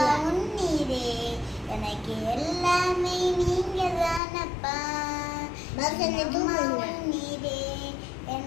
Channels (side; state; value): right; drops out; at 4.2 s